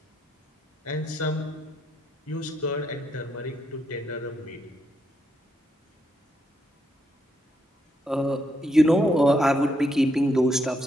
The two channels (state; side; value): normal; both; correlation 0.78